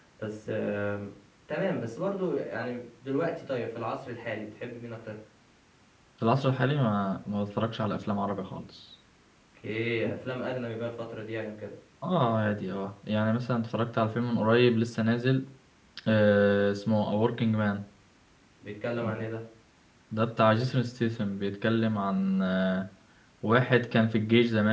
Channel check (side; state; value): both; identical; correlation 1.00